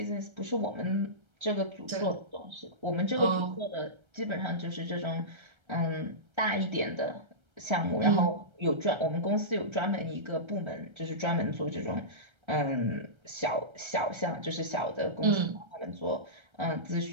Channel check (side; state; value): left; late; 1.3 ms